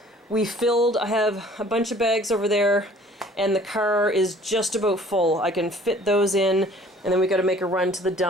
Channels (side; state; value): both; normal; correlation 0.53